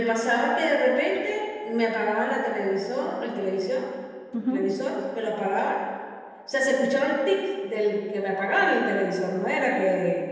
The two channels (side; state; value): both; identical; correlation 1.00